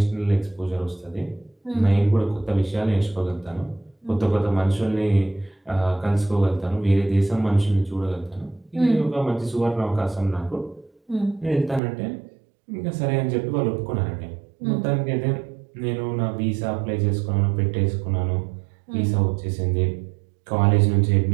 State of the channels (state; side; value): drops out; left; at 11.8 s